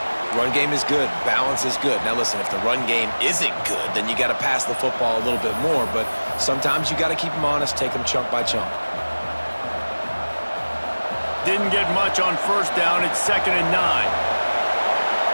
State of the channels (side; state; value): both; inverted; correlation -1.00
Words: Run game is good. Balance is good. Now listen, if the run game isn't good, then you got to pass the football a little bit more. But sometimes you got to keep them honest, take them chunk by chunk. Didn't get much on 1st down. It's 2nd and 9.